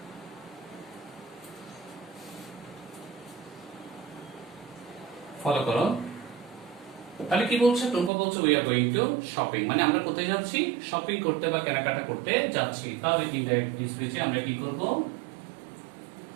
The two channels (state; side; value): drops out; left; at 8.1 s